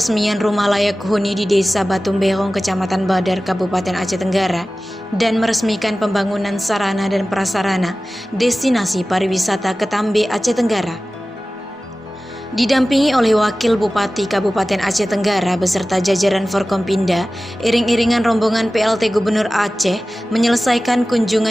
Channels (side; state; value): both; normal; correlation 0.96